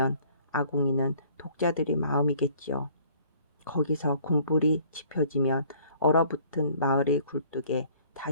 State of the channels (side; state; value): both; inverted; correlation -0.56